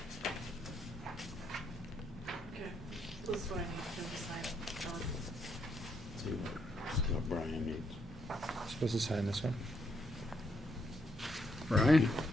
Okay, this is what I need to sign. See what Brian needs. Supposed to sign this one? Brian,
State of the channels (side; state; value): both; normal; correlation 0.75